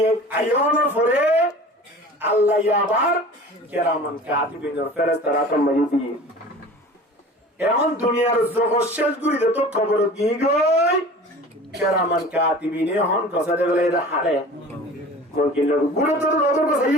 আয়নের পরে আল্লাহ আবার কেরামান কাতিবিনের ফেরেশতারা তোমাকে দিয়ে এখন দুনিয়ার জগৎ শেষ গুলিতে তো খবর দিয়ে গই কেরামান কাতিবিনে এখন গজরে বেড়াইতে হারে মুনকিন নকির গুলো তো রোদর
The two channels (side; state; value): both; normal; correlation 0.40